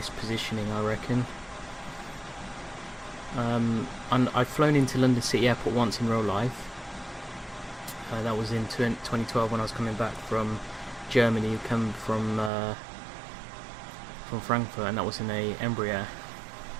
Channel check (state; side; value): drops out; left; at 12.5 s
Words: positioning, I reckon. And I've flown into London City Airport once in real life. That was in 2012 when I was coming back from Germany, come from from Frankfurt, and that was in a Embraer.